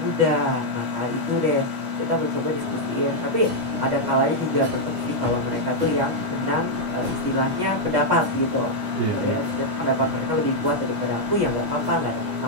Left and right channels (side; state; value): left; late; 10 ms